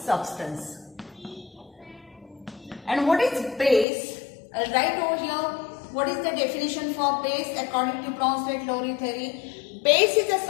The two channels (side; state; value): right; drops out; at 3.9 s